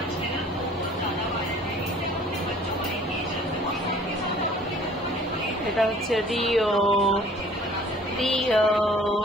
এটা হচ্ছে Rio Rio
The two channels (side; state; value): both; normal; correlation 0.52